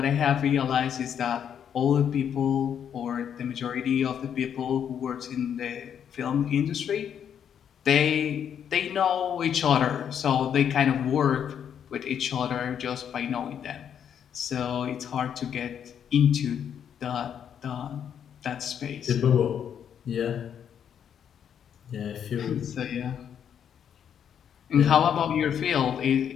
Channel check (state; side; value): quieter; right; 8.6 dB